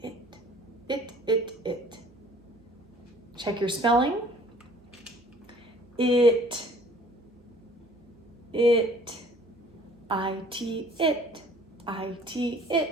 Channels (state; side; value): normal; both; correlation 0.53